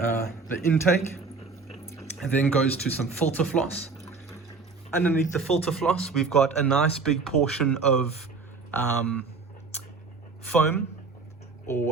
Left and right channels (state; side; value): quieter; left; 4.5 dB